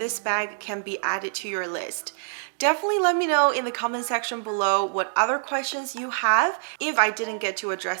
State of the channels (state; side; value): silent; left; digital silence